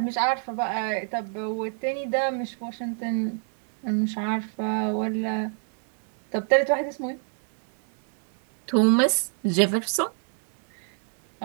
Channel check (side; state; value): left; silent; 55 dB below the other